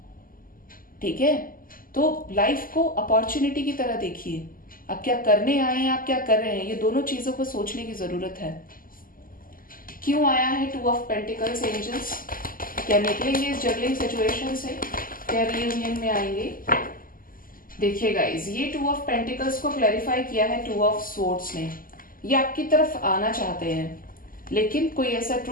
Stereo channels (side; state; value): right; late; 0.41 ms